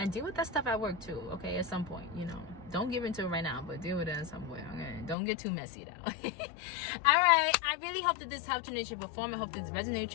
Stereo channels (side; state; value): right; drops out; at 5.2 s